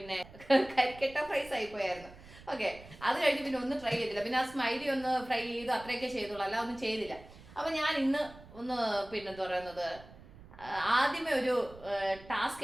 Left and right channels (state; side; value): noise; right; rumble, 20 dB below the sound